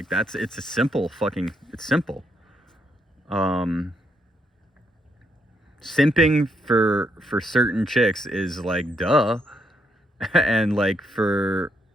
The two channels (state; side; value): normal; both; correlation 0.76